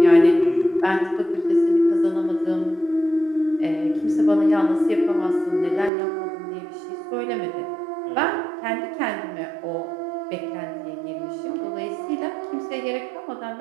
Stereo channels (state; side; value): drops out; left; at 5.9 s